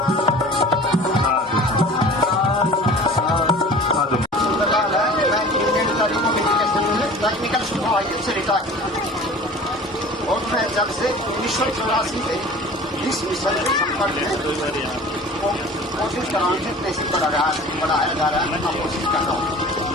टेक्निकल सुपरवाइजर से रिटायर और मैं जब से 1984 से इस मिशन के संपर्क में कोशिश कर रहा हूँ कैसे बढ़ाया जा रहा है। मैं कोशिश कर रहा हूँ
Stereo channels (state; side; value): normal; both; correlation 0.42